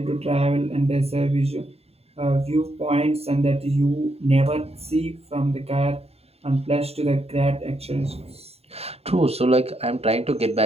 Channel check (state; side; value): late; left; 0.29 ms